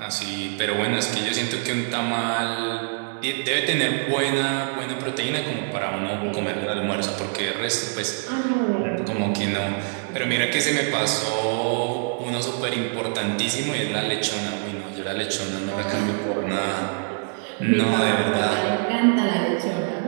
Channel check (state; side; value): silent; left; 62 dB below the other